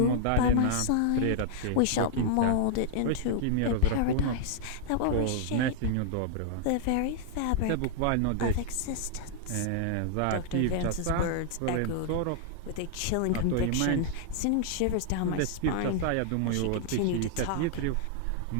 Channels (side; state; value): both; different; correlation -0.01